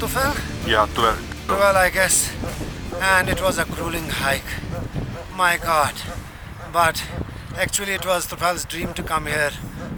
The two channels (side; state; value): both; identical; correlation 1.00